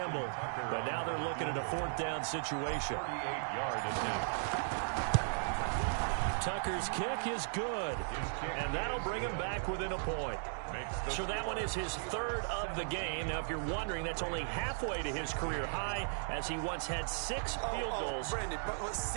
But now they're looking at a 4th down situation. 38-yard attempt. Tucker's kick is good. And that'll bring him back within a point. So that one is his 3rd of the game. Now, if you're wondering, that's only halfway to his career high, as he once had 6 field goals. Brandon, but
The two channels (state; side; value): silent; left; digital silence